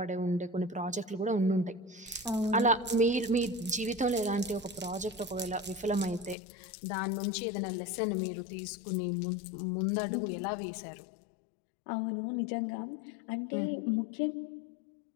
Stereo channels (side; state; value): right; drops out; at 6.4 s